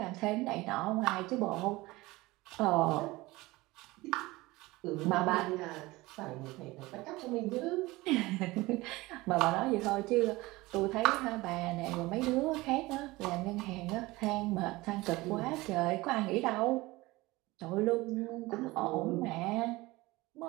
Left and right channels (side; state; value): left; quieter; 20.6 dB